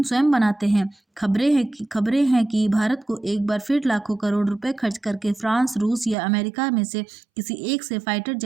स्वयं बनाते हैं। खबरें हैं कि भारत को एक बार फिर लाखों करोड़ रुपए खर्च करके फ्रांस, रूस या अमेरिका में से किसी एक से फाइटर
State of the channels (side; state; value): left; drops out; at 6.2 s